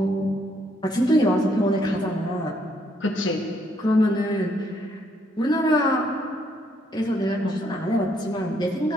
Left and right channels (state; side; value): normal; both; correlation 0.71